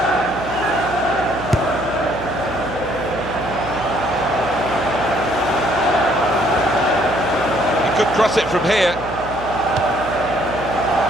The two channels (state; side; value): noise; right; hum, 12 dB below the sound